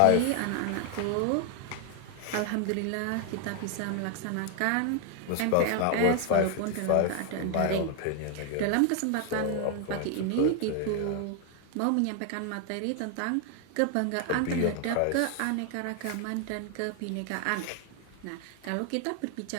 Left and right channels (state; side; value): different; both; correlation 0.00